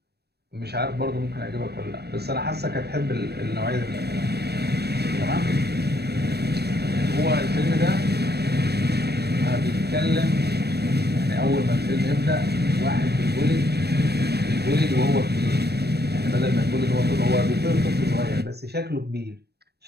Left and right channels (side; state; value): left; late; 0.47 ms